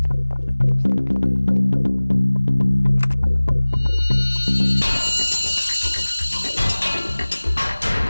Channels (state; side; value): inverted; both; correlation -1.00